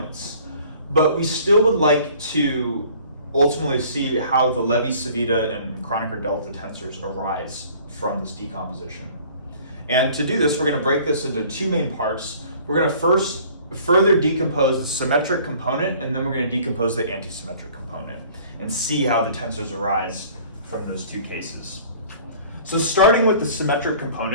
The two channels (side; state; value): both; inverted; correlation -0.52